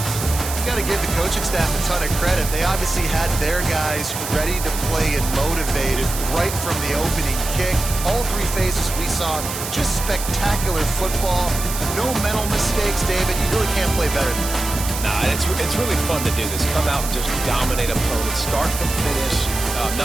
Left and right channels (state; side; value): noise; right; hiss, 7 dB below the sound